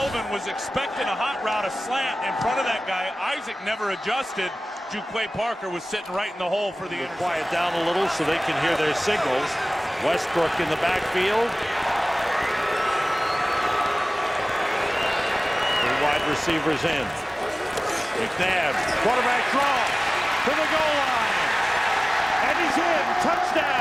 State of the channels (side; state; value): both; normal; correlation 0.98